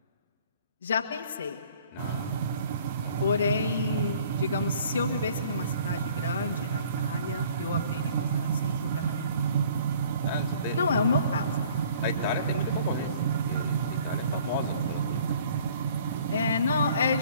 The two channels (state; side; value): inverted; both; correlation -0.54